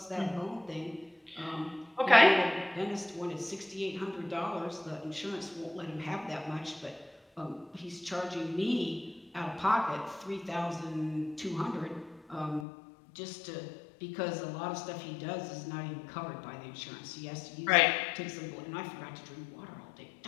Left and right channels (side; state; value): right; drops out; at 12.7 s